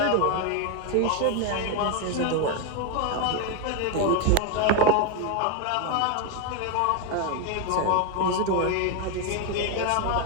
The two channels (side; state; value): both; different; correlation 0.01